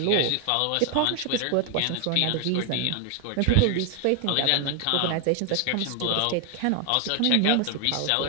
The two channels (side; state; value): both; different; correlation 0.00